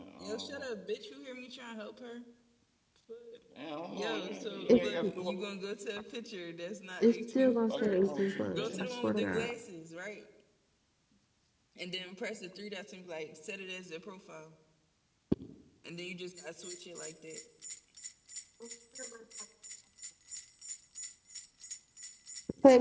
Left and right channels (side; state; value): both; identical; correlation 1.00